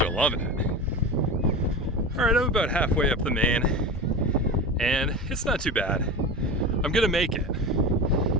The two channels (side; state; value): both; normal; correlation 0.27